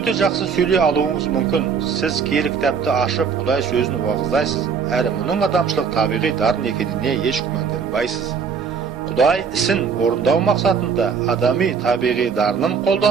жақсы сөйлей алуыңыз мүмкін. Сіз киелі кітапты ашып, Құдай сөзін уағыздайсыз. Әрі мұның адамшылық табиғи дарын екеніне еш күмәнданбайсыз. Құдай ісін орындау мақсатында адами табиғи дарынын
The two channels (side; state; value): left; quieter; 6.1 dB